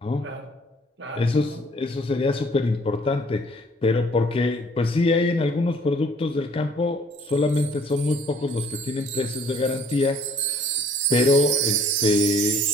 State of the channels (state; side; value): normal; both; correlation 0.58